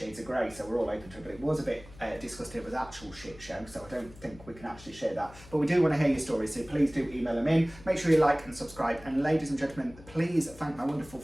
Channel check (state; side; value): noise; left; hum, 20 dB below the sound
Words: of Grey, so we're all open to it, but it was a bit disgusting. It was actual shit show, so I don't think we can actually share that. But we do want to hear your stories, so please do email them in. Make sure you like and subscribe. And ladies and gentlemen, please thank my wonderful